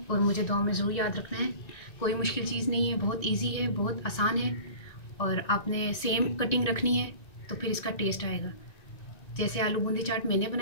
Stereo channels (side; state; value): right; late; 1.9 ms